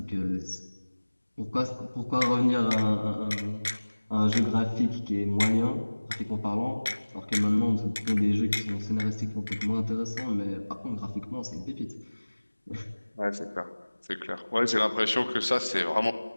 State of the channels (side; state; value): both; inverted; correlation -1.00